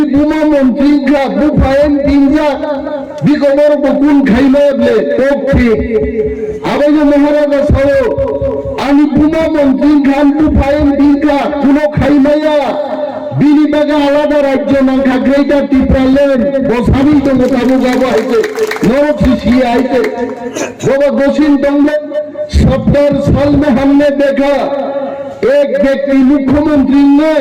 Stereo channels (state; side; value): identical; both; correlation 1.00